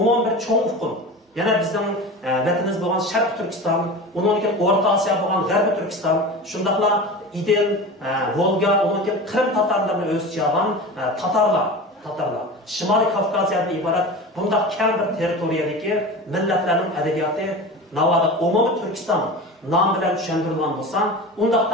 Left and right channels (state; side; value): normal; both; correlation 0.31